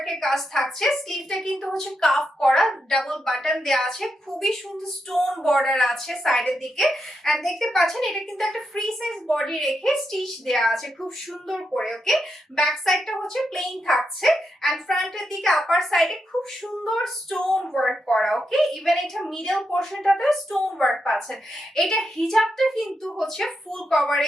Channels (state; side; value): normal; both; correlation 0.84